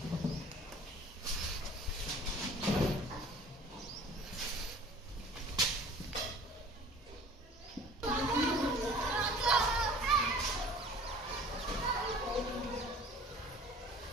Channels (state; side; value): normal; both; correlation 0.47